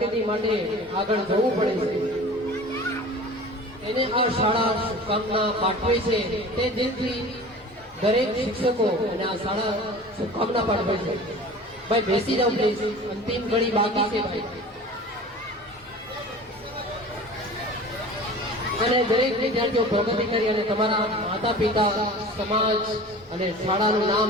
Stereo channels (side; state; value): both; normal; correlation 0.39